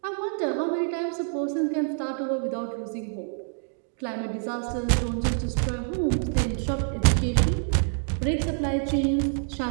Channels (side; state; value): left; silent; digital silence